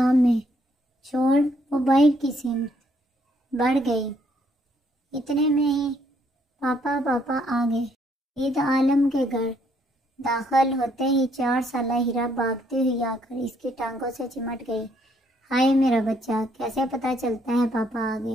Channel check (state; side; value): normal; both; correlation 0.69